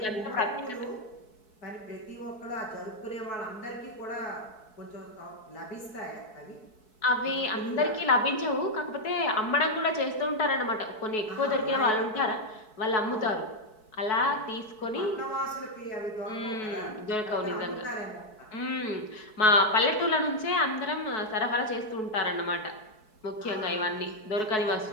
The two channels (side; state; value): right; late; 4.6 ms